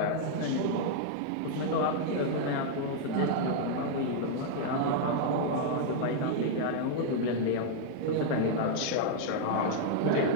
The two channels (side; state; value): both; different; correlation -0.01